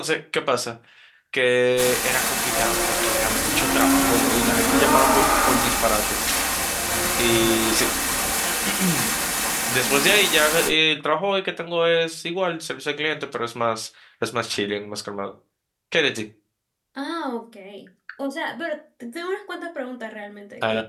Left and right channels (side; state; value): both; identical; correlation 1.00